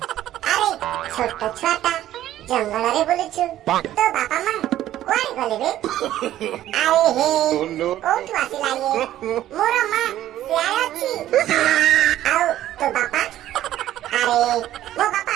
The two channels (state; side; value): quieter; left; 13.1 dB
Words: আরে ছোট ছুয়াটা জঙ্গলরে বুলুছু তো বাপা মা কুଆଡେ গলে ବେ আরে হে কোଉଠୁ ଆସିଲା ଇଏ ମୋର ମା ସିଆଡେ ଅଛି ଆଉ ତୋ ବାପା ଆରେ ମୋ ବାପା